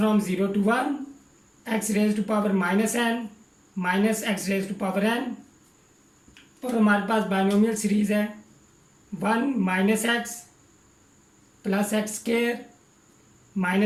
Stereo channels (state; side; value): identical; both; correlation 1.00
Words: 0 to 1 x raise to power minus n minus x raise to power n, और हमारे पास बाइनोमियल सीरीज़ है 1 minus X plus X square